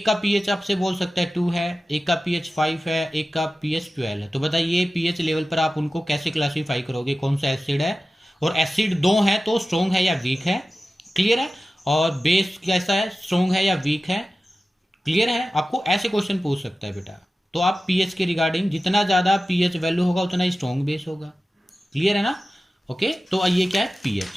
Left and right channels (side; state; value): both; normal; correlation 0.95